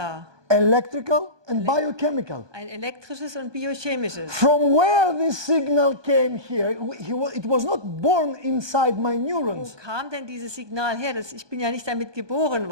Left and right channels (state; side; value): late; left; 1.2 ms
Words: Electrical and biochemical. Ein elektrisches und biochemisches. From where this signal came here, it was not born inside my Wo neurons. kam denn dieses Signal her? Ich bin ja nicht damit geboren